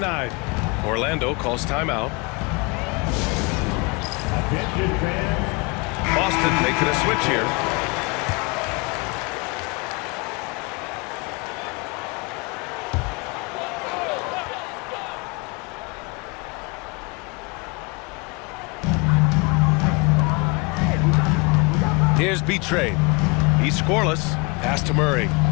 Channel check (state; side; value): quieter; right; 29.4 dB